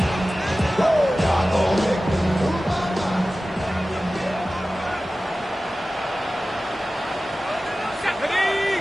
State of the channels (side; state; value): both; normal; correlation 0.96